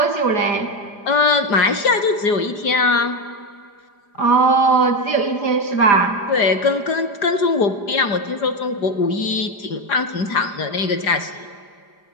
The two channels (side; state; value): right; late; 4.9 ms